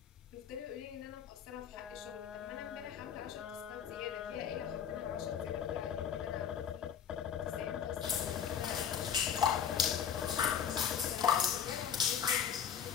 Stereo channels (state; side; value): quieter; right; 8.1 dB